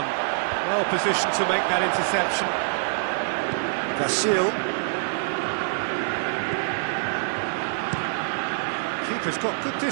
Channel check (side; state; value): left; silent; 61 dB below the other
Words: Well positioned to make that interception. Vasil. Keeper's got good